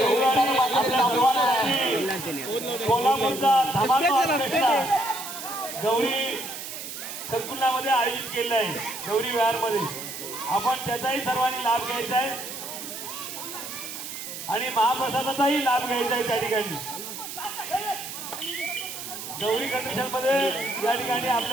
कोल्हापूरचा धमाका गौरी संकुलामध्ये आयोजित केलेला आहे. गौरी विहारमध्ये आपण त्याचाही सर्वांनी लाभ घ्यायचा आहे आणि महाप्रसादाचाही लाभ घ्यायचा आहे. त्या ठिकाणी गौरी कंडिशन मध्ये या ठिकाणी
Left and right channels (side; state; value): right; noise; hiss, 9 dB below the sound